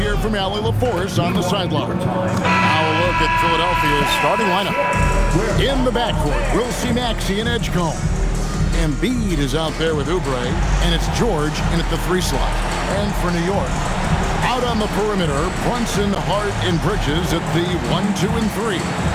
from Allie LaForce on the sideline. Now a look at Philadelphia's starting lineup. In the backcourt, we'll see Maxey and Edgecombe. Embiid is out there with Oubre, and it's George in at the 3 slot. And for New York, out on the perimeter, Brunson, Hart, and Bridges at the 1, 2, and 3.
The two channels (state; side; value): identical; both; correlation 1.00